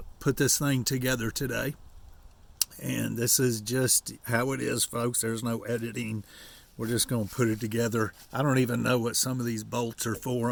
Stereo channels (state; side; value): identical; both; correlation 1.00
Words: put this thing together today. And this is just how it is, folks. There's no editing. We're just going to put it together. I don't even know what some of these bolts are for.